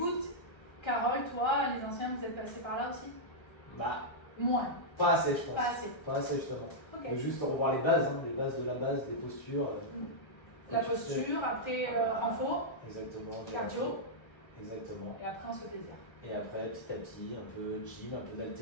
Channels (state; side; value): late; right; 1.3 ms